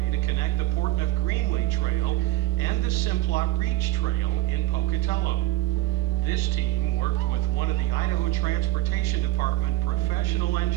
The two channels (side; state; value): left; quieter; 17.2 dB